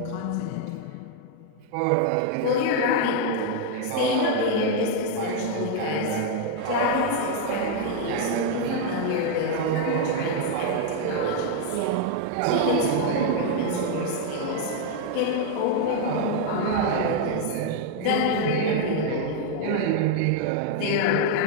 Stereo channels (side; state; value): both; different; correlation 0.00